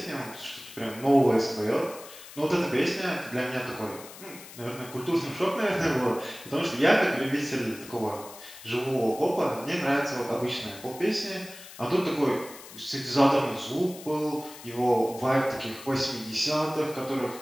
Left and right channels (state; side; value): noise; left; hiss, 16 dB below the sound